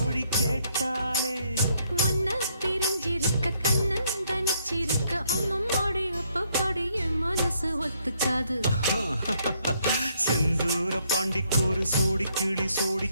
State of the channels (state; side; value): inverted; both; correlation -0.71